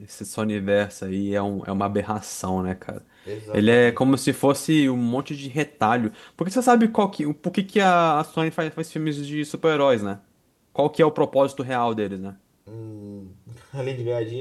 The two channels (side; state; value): both; identical; correlation 1.00